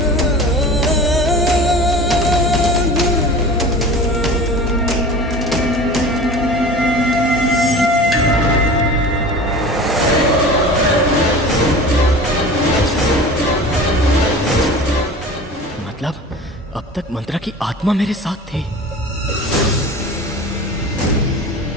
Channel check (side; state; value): both; normal; correlation 0.37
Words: अब तक मंत्रा की आत्मा मेरे साथ थी।